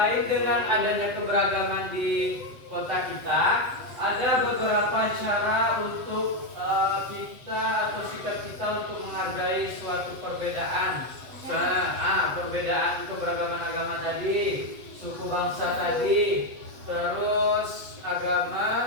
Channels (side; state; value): left; late; 7.9 ms